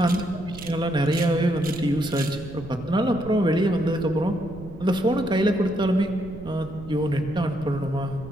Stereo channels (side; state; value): right; noise; rumble, 15 dB below the sound